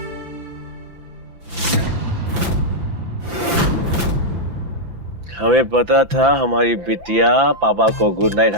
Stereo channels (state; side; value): late; left; 5.9 ms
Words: हमें पता था हमारी बिटिया पापा को गुड नाइट